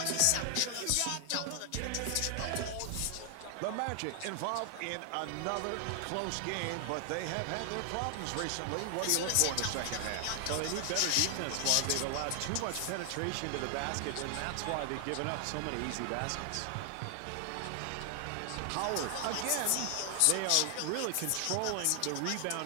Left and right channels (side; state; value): both; different; correlation 0.00